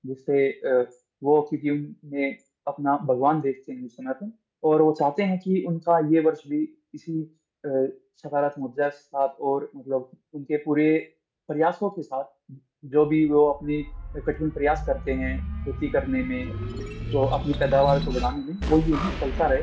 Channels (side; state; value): both; identical; correlation 1.00